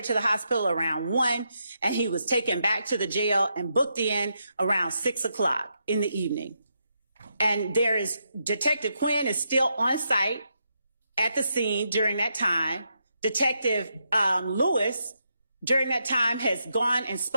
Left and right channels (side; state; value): both; inverted; correlation -0.82